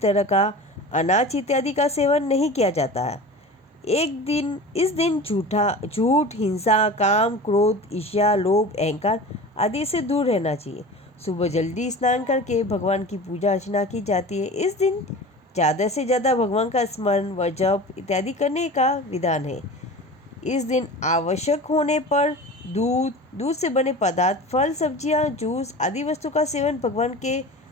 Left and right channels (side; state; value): both; normal; correlation 0.35